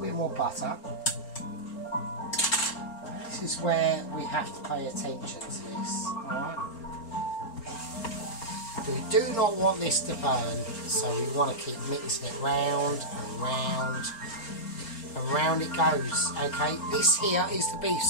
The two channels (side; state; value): right; late; 4.4 ms